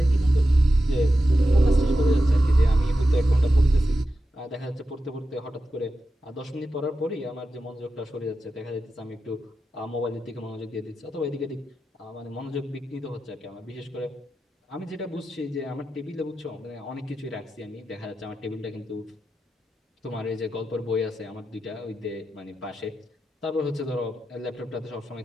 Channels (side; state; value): both; normal; correlation 0.90